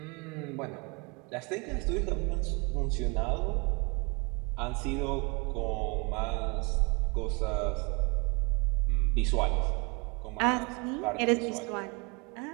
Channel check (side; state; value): left; quieter; 30.2 dB